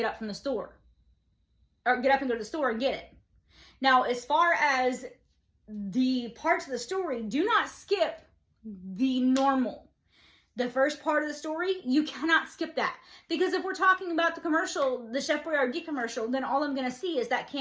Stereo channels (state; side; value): identical; both; correlation 1.00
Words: up from the store, or get up and go to the store and get it. Now, as far as the parts of the story, do not skip the normal. The first part of the story, you cannot skip that. Because if we're talking about the commercial, the Chef Boyardee commercial, then all I'm going to see is that